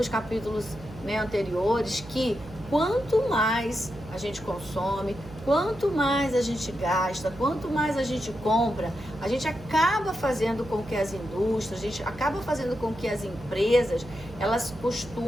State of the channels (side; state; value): right; noise; hum, 17 dB below the sound